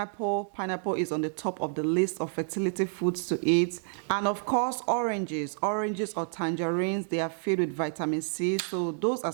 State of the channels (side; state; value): left; silent; digital silence